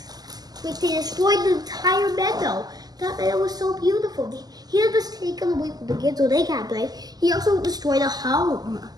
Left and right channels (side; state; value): left; late; 0.19 ms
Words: Like they destroyed the entire meadow. That meadow was so beautiful. He had just taken away from the kids so they can't play. He also destroyed a home.